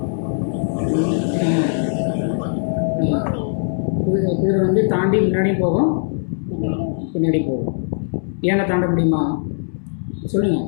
குதிரை வந்து தாண்டி முன்னாடியும் போகும், பின்னாடி போகும். ஏனை தாண்ட முடியுமா சொல்லுங்கள்.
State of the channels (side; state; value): right; silent; 66 dB below the other